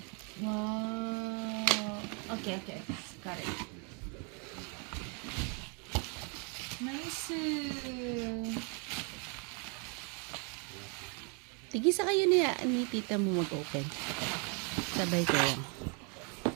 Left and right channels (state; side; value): quieter; left; 35.8 dB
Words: Wow. Okay. Got it. Nice. Tigisa kayo ni tita mo mag-open. Sabay kayo.